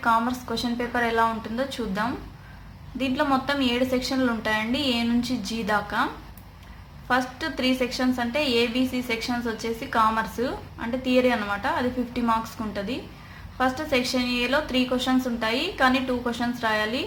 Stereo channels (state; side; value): identical; both; correlation 1.00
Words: commerce question paper ఎలా ఉంటుందో చూద్దాం. దీంట్లో మొత్తం 7 సెక్షన్లు ఉంటాయండి, ఏ నుంచి జీ దాకా. ఫస్ట్ 3 సెక్షన్స్ అంటే ఏబిసి సెక్షన్స్ వచ్చేసి కామర్స్ అంటే థియరీ అనమాట, అది 50 మార్క్స్కి ఉంటుంది. ఫస్ట్ సెక్షన్ ఏలో 3 క్వశ్చన్స్ ఉంటాయి, కానీ 2 క్వశ్చన్స్ రాయాలి.